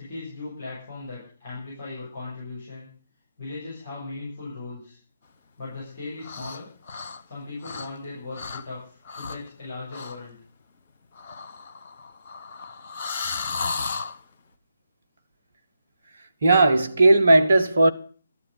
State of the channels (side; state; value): both; inverted; correlation -0.88